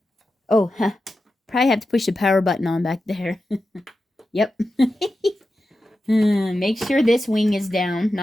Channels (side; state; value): both; normal; correlation 0.91